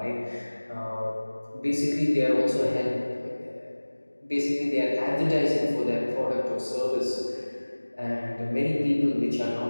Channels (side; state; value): both; inverted; correlation -1.00